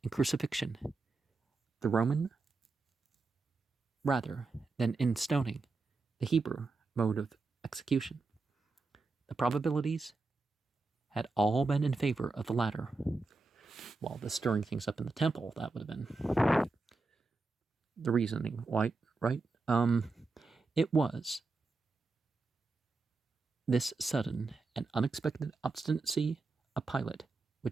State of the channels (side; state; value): left; quieter; 3.7 dB